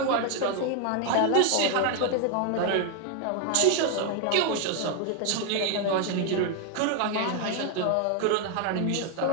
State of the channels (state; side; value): different; both; correlation 0.00